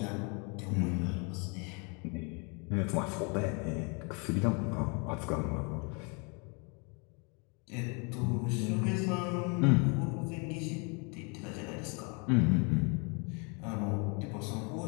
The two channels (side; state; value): right; quieter; 33.7 dB